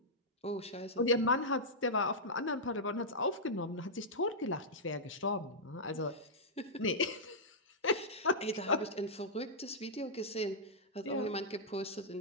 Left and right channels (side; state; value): both; normal; correlation -0.10